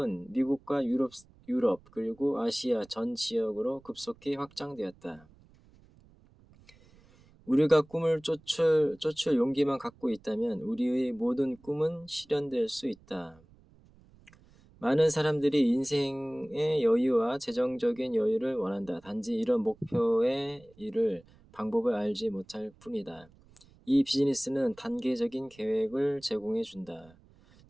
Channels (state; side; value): noise; right; rumble, 27 dB below the sound